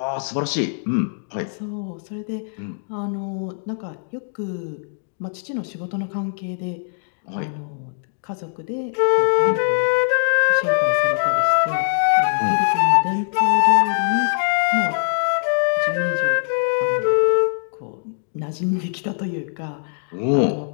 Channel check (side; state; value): right; silent; digital silence